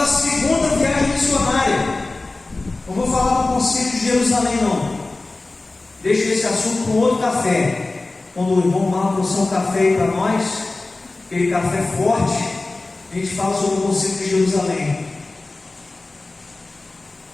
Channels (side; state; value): right; quieter; 3.2 dB